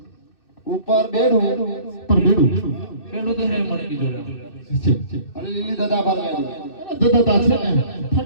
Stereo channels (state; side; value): late; right; 2.6 ms